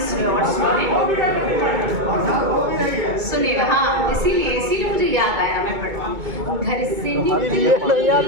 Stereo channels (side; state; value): left; late; 2.2 ms